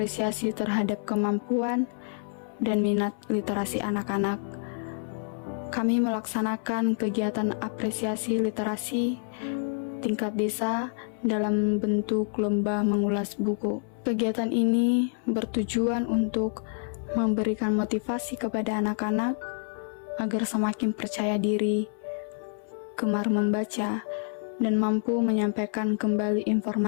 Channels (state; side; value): silent; right; 59 dB below the other